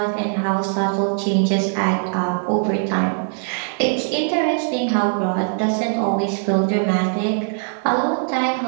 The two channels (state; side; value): silent; left; 62 dB below the other